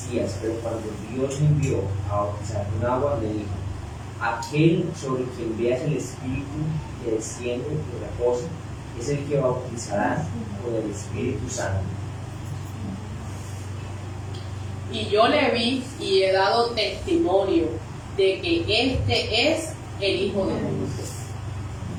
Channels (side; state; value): both; identical; correlation 1.00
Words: pero cuando Dios me envió a bautizar con agua, me dijo, aquel sobre quien veas el Espíritu que desciende y reposa, es el que bautizará con el Espíritu Santo. Y yo le vi y he dado testimonio de que este es el Hijo de Dios.